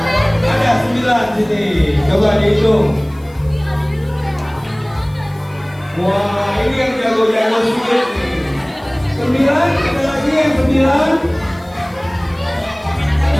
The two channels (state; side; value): noise; left; hiss, 29 dB below the sound